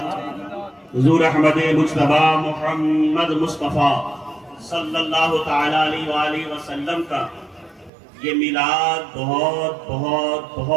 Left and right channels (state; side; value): drops out; left; at 7.9 s